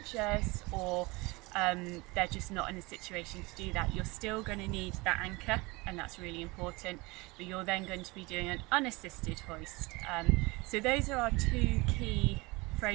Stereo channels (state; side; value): quieter; left; 24.3 dB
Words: or they're just not in a situation to do that, you're still going to need that anchor, and that's really important, but you're then going to be doing an unassisted hoist. So those are our 2 key